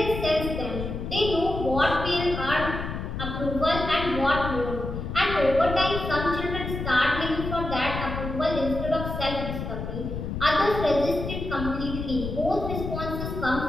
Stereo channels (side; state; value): left; noise; rumble, 5 dB below the sound